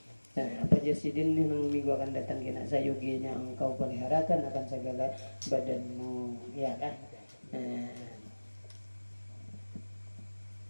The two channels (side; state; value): both; inverted; correlation -1.00